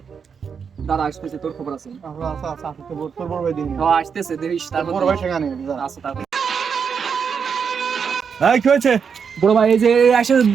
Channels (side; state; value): left; quieter; 6.4 dB